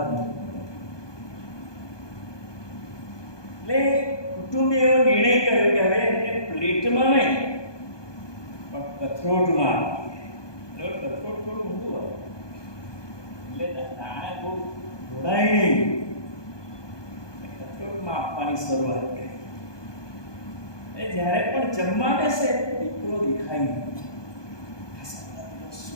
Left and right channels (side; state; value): right; late; 1.2 ms